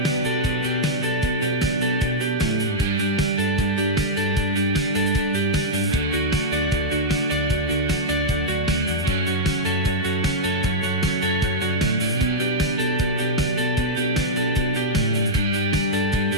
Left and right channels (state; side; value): normal; both; correlation -0.05